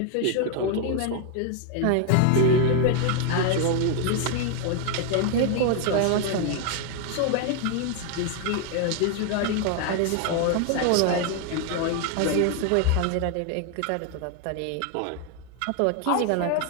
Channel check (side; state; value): both; different; correlation 0.01